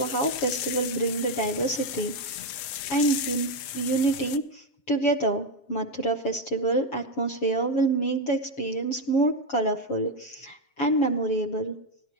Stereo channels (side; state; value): right; late; 7.4 ms